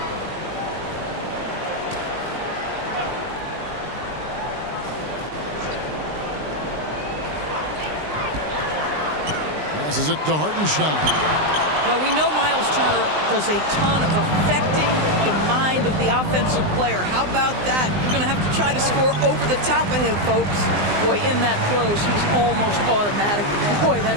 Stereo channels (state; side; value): late; left; 20 ms